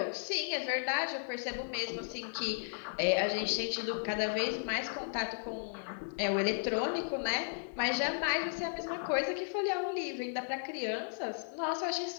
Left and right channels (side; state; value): right; silent; digital silence